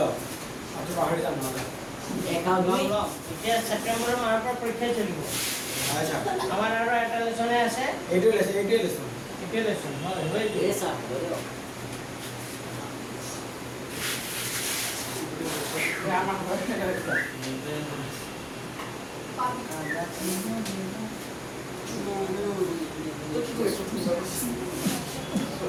আটো পাহৰি যাম না এতিয়া সেপ্টেম্বৰৰ মাহৰ পৰা পৰীক্ষা চলিব আচ্ছা আমাৰ আৰু এটা লেছনে আছে এইটো লেছ এতিয়া লেছন হয় Esa, bro.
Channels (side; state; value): both; identical; correlation 1.00